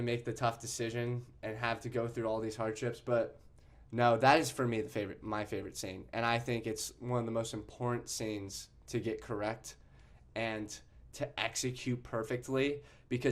make the tough decision and have to go through all these hardships. But no, that is for me my favorite scene. And I think it's one of the most important scenes to get correct and to execute perfectly.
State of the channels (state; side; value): identical; both; correlation 1.00